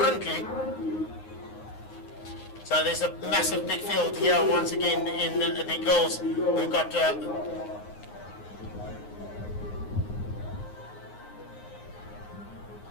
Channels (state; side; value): late; right; 9.6 ms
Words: So there's a massive big field here once again in the girls. We've got